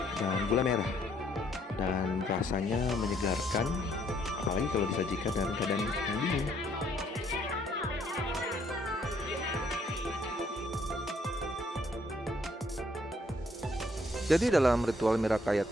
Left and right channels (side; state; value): both; normal; correlation 0.67